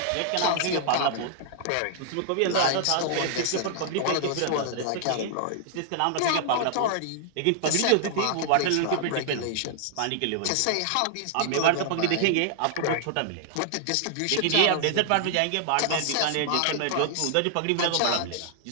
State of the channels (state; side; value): different; both; correlation -0.01